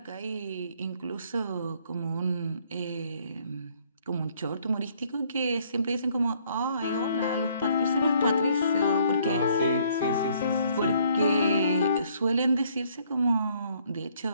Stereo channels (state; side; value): inverted; both; correlation -0.64